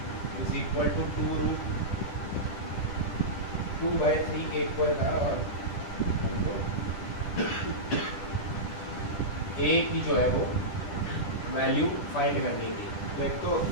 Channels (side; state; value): right; late; 10 ms